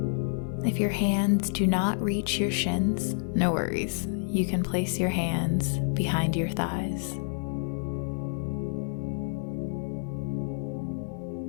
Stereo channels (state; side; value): silent; right; digital silence